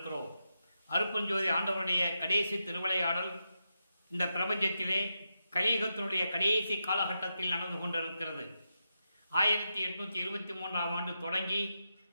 அருட்பெருஞ்சோதி ஆண்டவருடைய கடைசி திருவிளையாடல் இந்த பிரபஞ்சத்திலே கலியுகத்தினுடைய கடைசி காலகட்டத்தில் நடந்து கொண்டிருக்கிறது. 1823ஆம் ஆண்டு தொடங்கி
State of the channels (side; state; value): both; inverted; correlation -0.87